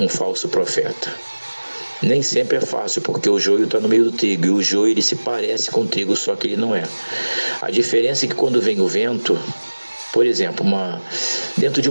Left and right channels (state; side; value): inverted; both; correlation -1.00